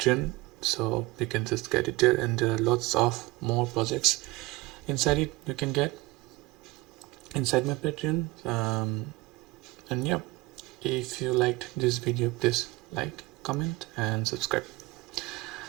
so you can just get it there, and there are lots of more projects inside it you can get inside my Patreon. And yeah, if you liked this video, please like, comment and subscribe.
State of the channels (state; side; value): quieter; left; 21.3 dB